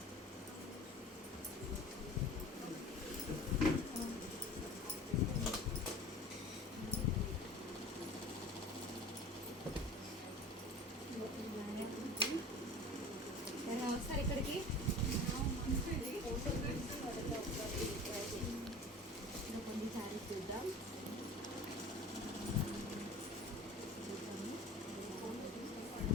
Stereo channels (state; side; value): normal; both; correlation 0.40